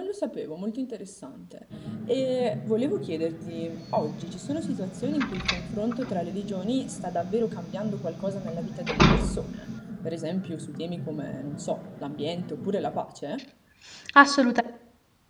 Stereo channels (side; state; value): both; identical; correlation 1.00